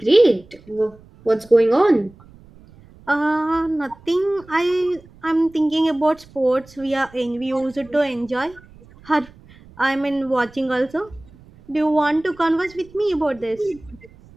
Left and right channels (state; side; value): noise; right; rumble, 25 dB below the sound